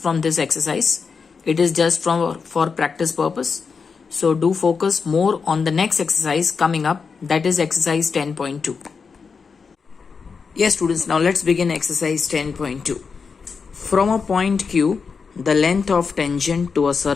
this exercise. It is just for practice purpose. So do focus more on the next exercise coming up, that is exercise 10.2. Yes students, now let's begin exercise 10.2. From a point Q, the length of tangent to a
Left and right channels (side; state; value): right; quieter; 5.4 dB